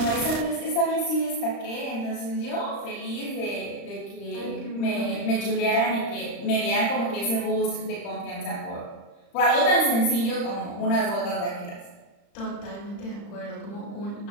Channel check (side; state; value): right; late; 35 ms